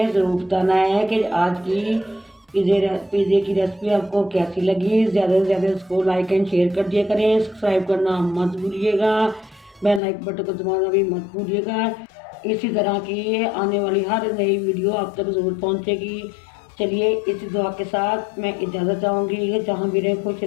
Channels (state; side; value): drops out; right; at 10.0 s